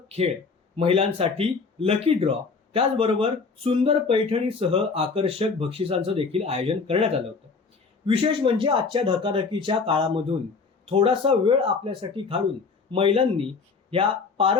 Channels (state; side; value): quieter; right; 4.8 dB